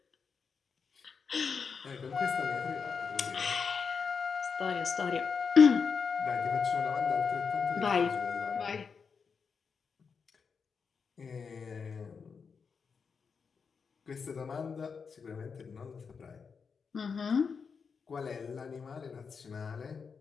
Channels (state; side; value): quieter; right; 5.7 dB